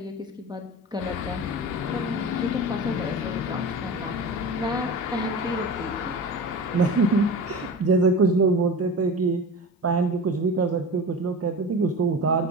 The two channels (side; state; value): both; normal; correlation 0.32